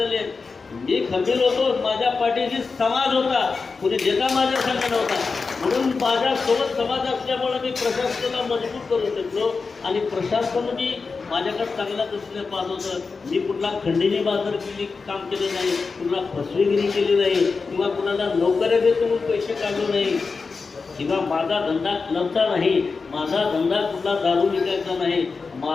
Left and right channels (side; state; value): right; quieter; 4.6 dB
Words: मी खंबीर होतो, माझ्या पाठीशी समाज होता, कुणी देता माझ्या संघ नव्हता. म्हणून माझ्यासोबत समाज असल्यामुळे मी प्रशासनाला मजबूत करू शकलो आणि प्रशासन मी माझ्याकडे चांगल्या दृष्टीने पाहत होतं. मी कुठला खंडणी बाजार केली काम केले नाही, कुठला फसवेगिरी केली नाही, किंवा कुणाला नोकऱ्या देतो म्हणून पैसे काढले नाही, किंवा माझा धंदा क्लबचा नाही, माझा धंदा कुठला दारू विकायचा नाही.